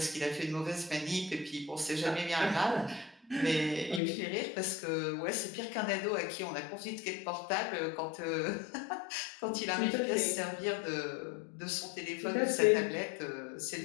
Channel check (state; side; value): drops out; right; at 4.0 s